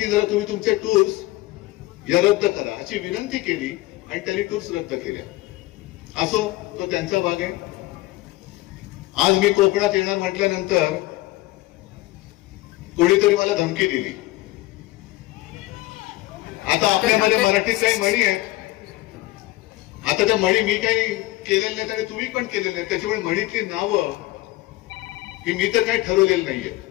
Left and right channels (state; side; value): quieter; right; 18.3 dB